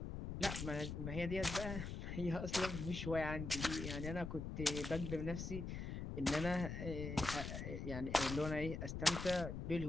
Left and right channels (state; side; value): noise; left; rumble, 5 dB below the sound